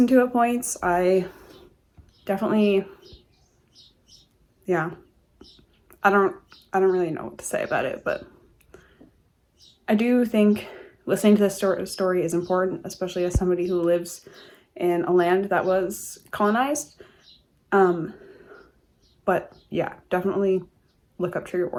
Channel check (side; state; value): both; identical; correlation 1.00